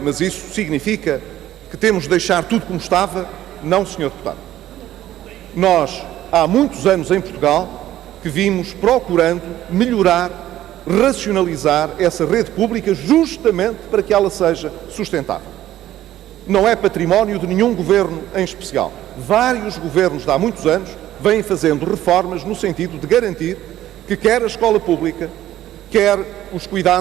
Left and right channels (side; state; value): left; quieter; 13.4 dB